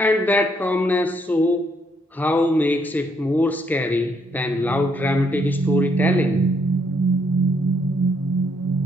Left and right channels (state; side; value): normal; both; correlation 0.72